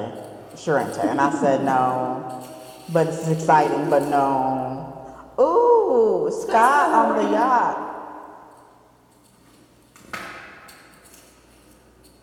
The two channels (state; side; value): identical; both; correlation 1.00